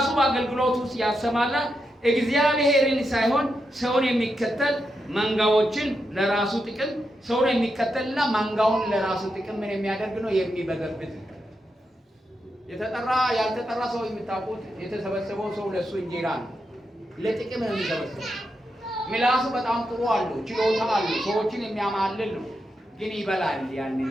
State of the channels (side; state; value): both; normal; correlation 0.85